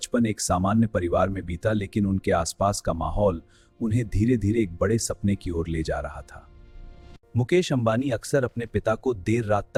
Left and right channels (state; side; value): identical; both; correlation 1.00